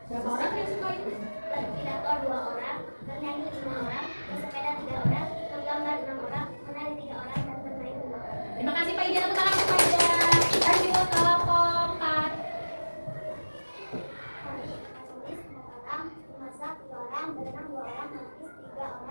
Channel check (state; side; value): inverted; both; correlation -1.00